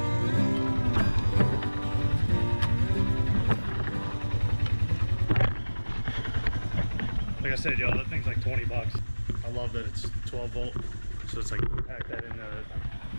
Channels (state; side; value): inverted; both; correlation -1.00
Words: Like I said, y'all, that thing's like 20 bucks. I love that it's 12 volt, so it's like pack that